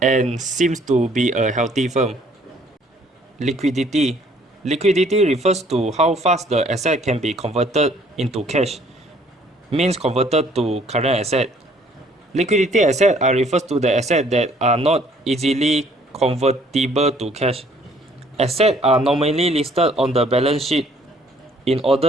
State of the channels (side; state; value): both; normal; correlation 0.61